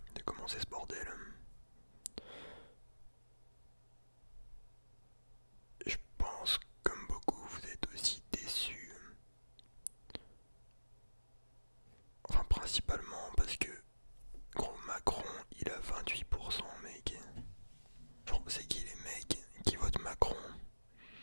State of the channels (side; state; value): both; inverted; correlation -1.00